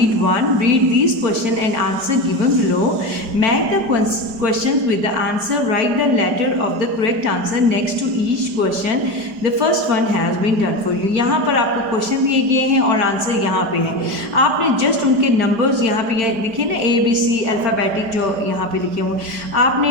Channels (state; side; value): late; left; 4.9 ms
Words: one, read this question and answer given below, match the question with the answer, write the letter of the correct answer next to each question, the first one has been done for you. यहाँ पर आपको question दिए गए हैं और answer यहाँ पे है। आपने जस्ट उनके नंबर्स यहाँ पे दिखे ना, ABC अल्फ़ाबेटिक जो यहाँ पे लिखे हुए, आपने